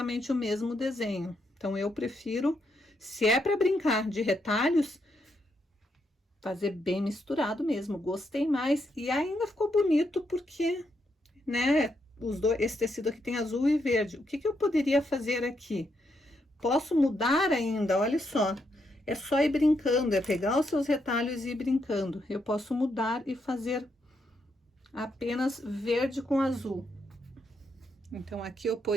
o mesmo desenho. Então, eu prefiro, se é para brincar de retalhos, fazer bem misturado mesmo. Gostei mais e ainda ficou bonito porque, né, esse tecido aqui tem azul e verde. O que que eu poderia fazer aqui? Posso mudar ainda, olha só. É só ir brincando, é pegar os seus retalhos e ir brincando. Eu posso mudar e fazer apenas verde com azul. Então, aqui eu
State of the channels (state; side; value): normal; both; correlation 0.79